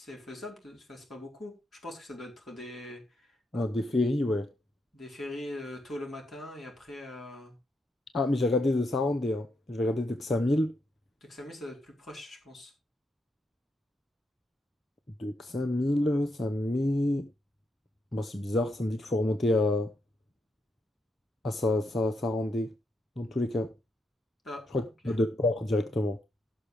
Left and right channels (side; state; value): both; normal; correlation 0.80